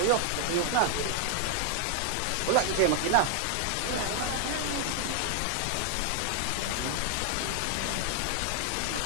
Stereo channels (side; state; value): both; different; correlation 0.00